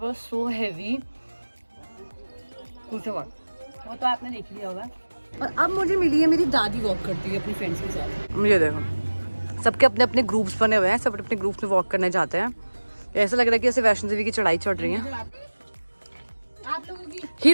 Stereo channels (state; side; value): inverted; both; correlation -1.00